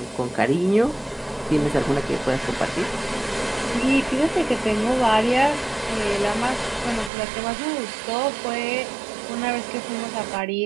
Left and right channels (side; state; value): left; drops out; at 7.1 s